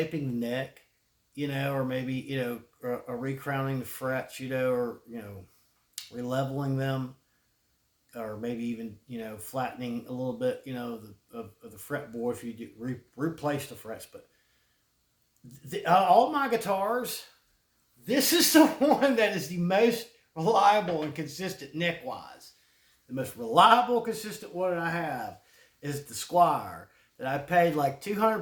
the neck, or maybe or recrowning the frets, or releveling them, or maybe even flattening a little bit, of the fretboard if you do replace the frets, but. All my guitars, this is the one that is the most reliable and consistent neck-wise. The most reliable, consistent one I have is the Squire that I paid like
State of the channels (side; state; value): both; identical; correlation 1.00